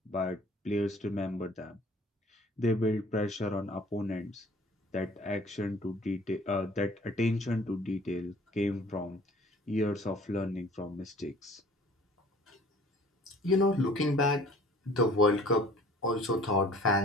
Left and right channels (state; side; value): normal; both; correlation 0.51